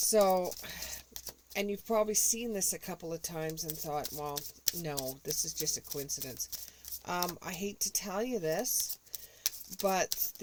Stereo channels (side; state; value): both; identical; correlation 1.00